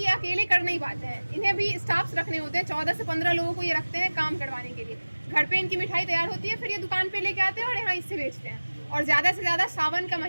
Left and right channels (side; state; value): both; inverted; correlation -1.00